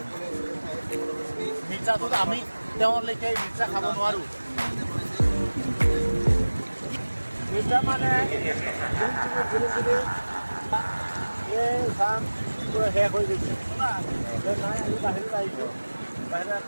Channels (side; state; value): both; inverted; correlation -1.00